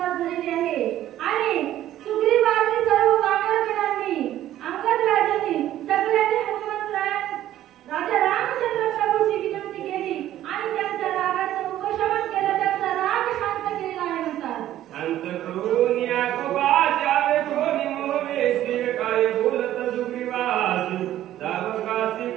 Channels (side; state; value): left; quieter; 12.9 dB